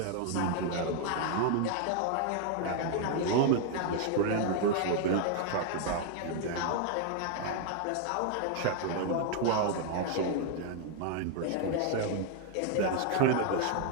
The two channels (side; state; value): both; different; correlation 0.00